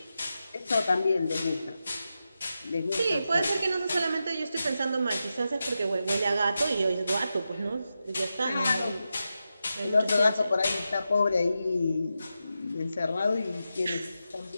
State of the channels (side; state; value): both; inverted; correlation -0.89